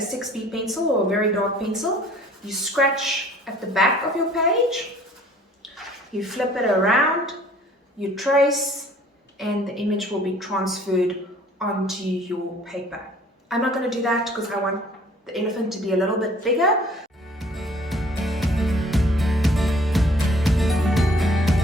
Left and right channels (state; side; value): normal; both; correlation 0.55